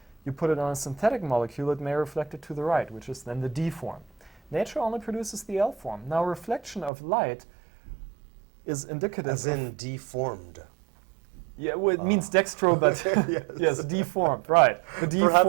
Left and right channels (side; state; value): left; drops out; at 6.9 s